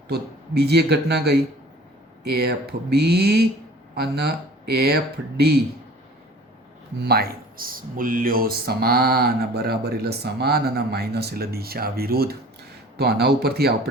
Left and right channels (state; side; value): normal; both; correlation 0.46